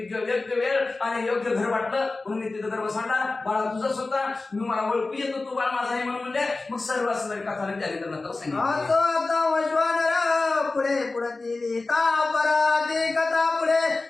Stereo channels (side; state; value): right; quieter; 3.5 dB